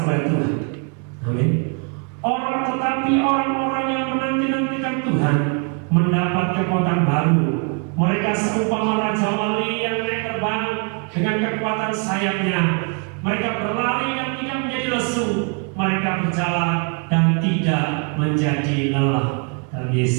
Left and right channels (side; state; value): left; quieter; 37.2 dB